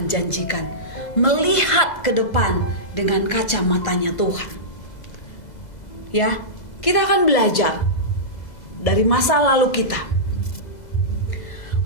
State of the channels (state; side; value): late; right; 2.0 ms